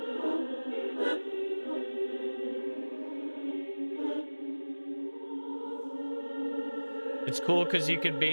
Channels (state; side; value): inverted; both; correlation -1.00